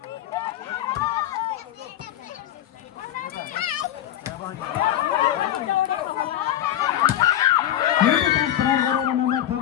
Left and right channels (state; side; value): quieter; right; 11.9 dB